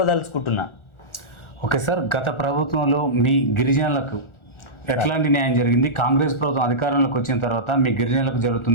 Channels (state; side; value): late; right; 1.4 ms